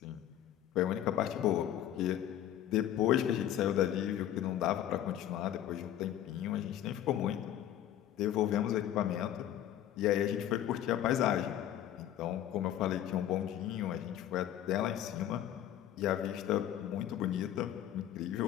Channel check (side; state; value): right; quieter; 11.4 dB